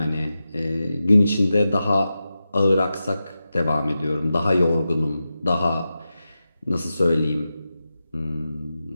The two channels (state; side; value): inverted; both; correlation -0.91